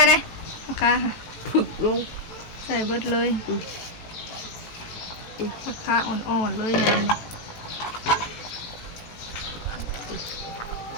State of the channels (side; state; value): right; late; 18 ms